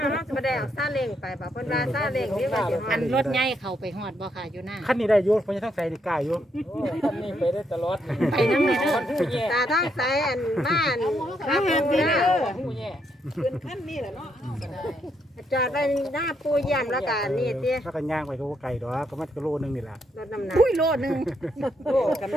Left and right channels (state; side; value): normal; both; correlation 0.76